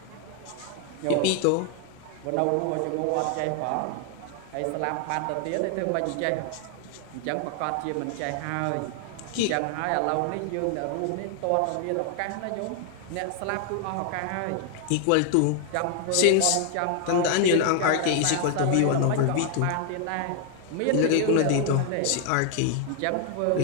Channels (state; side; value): different; both; correlation 0.00